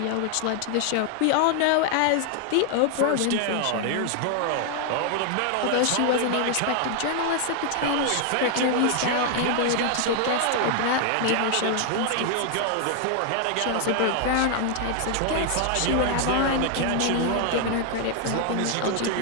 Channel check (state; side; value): different; both; correlation 0.00